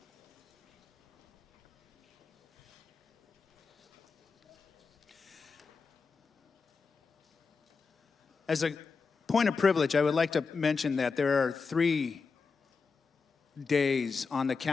As a point of privilege, I would like to mention that there are 3 days on the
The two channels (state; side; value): quieter; right; 4.9 dB